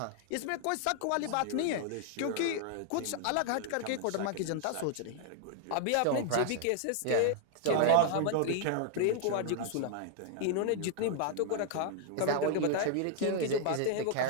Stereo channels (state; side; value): different; both; correlation 0.00